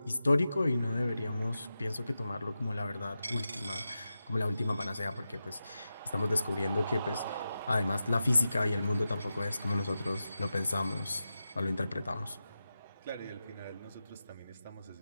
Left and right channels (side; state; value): both; inverted; correlation -0.91